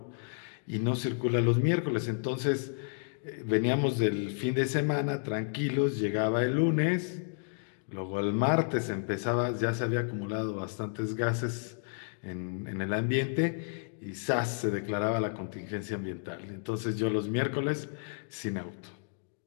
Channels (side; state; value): right; silent; digital silence